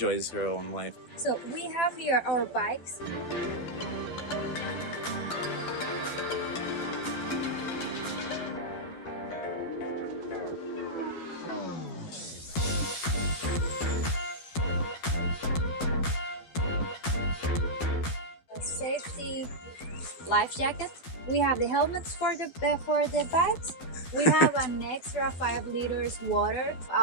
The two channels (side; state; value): right; late; 12 ms